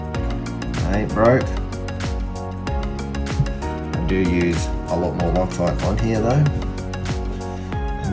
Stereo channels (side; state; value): both; identical; correlation 1.00